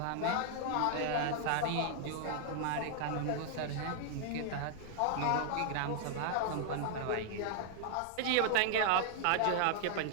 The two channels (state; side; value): different; both; correlation 0.00